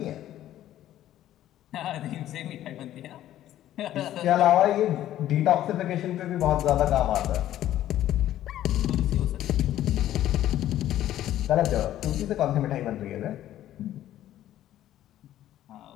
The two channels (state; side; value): quieter; right; 12.8 dB